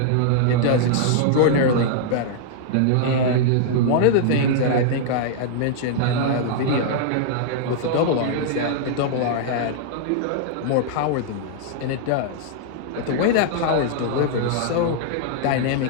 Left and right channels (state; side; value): different; both; correlation -0.01